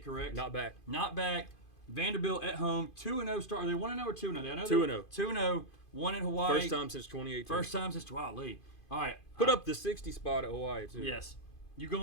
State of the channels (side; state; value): right; late; 2.5 ms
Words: correct? Not back. Not back. Vanderbilt at home, 2-0 start. Are they 1-0 or 2-0? I know 2-0. 2-0. One in Hawaii. First time since 2018. First time since Lee. All right. Put up the 60 spot at Hawaii too. Yes. You